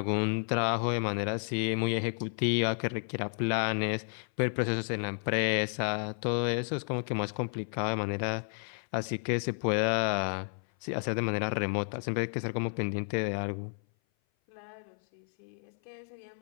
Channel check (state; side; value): silent; right; 57 dB below the other